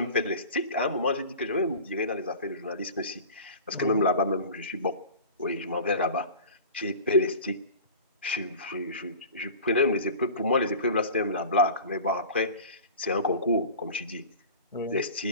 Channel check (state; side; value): inverted; both; correlation -0.38